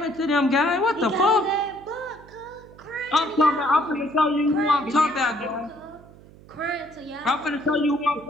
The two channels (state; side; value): noise; right; hum, 22 dB below the sound